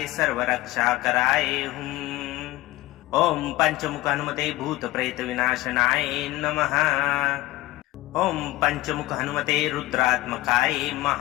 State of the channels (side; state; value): right; quieter; 17.9 dB